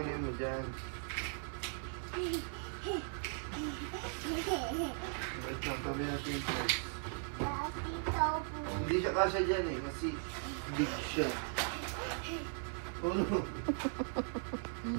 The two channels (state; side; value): silent; left; 52 dB below the other